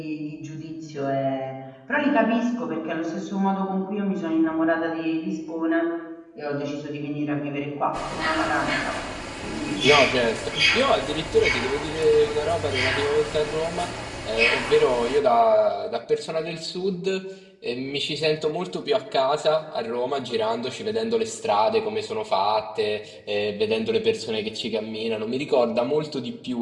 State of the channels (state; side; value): identical; both; correlation 1.00